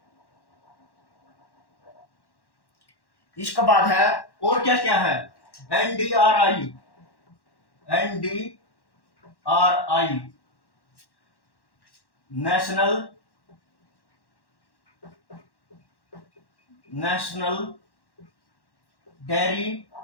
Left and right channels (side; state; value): right; late; 1.1 ms